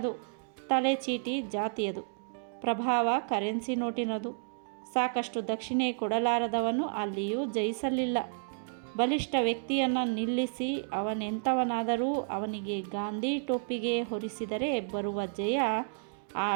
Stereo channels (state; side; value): silent; left; digital silence